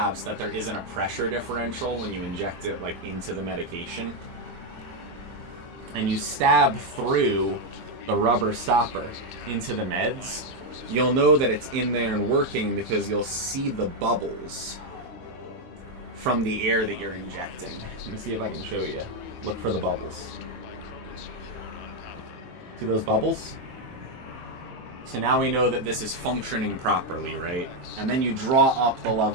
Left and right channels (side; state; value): left; late; 23 ms